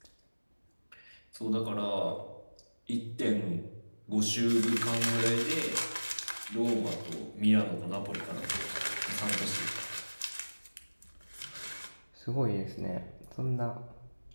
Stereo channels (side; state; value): both; inverted; correlation -1.00